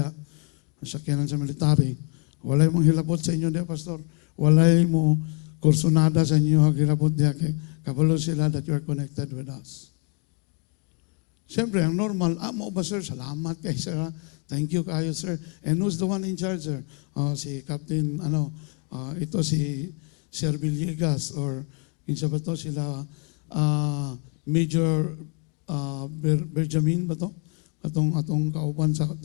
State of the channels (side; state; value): right; quieter; 34.2 dB